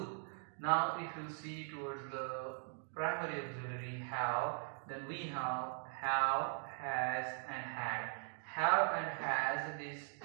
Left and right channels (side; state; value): left; silent; 51 dB below the other